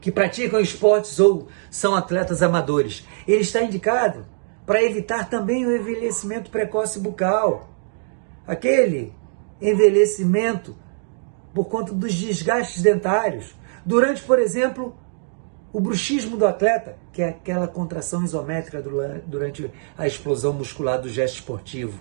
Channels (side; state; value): left; silent; digital silence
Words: que praticam esportes ou são atletas amadores. Ele está indicado para evitar também o envelhecimento precoce bucal. Aquele envelhecimento por conta dos desgastes dentários. Durante, por exemplo, o bruxismo do atleta, que é aquela contração isométrica durante a explosão muscular do gesto esportivo.